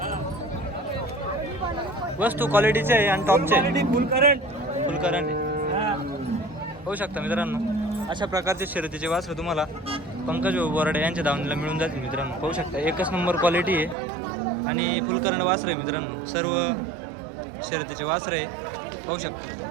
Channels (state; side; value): drops out; left; at 14.0 s